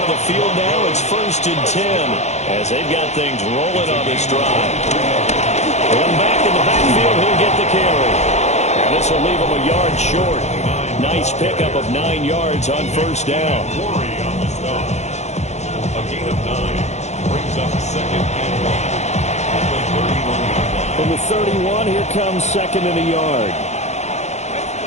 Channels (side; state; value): right; late; 0.33 ms